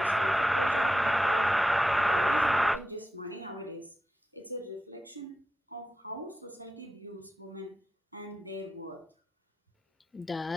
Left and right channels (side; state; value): both; normal; correlation 0.90